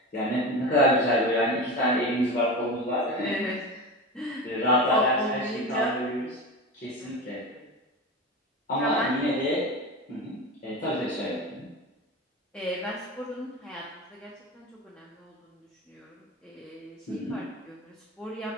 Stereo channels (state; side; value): normal; both; correlation 0.26